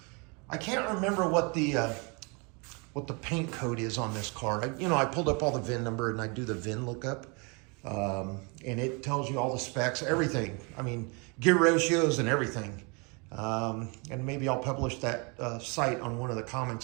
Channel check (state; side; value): quieter; left; 31.6 dB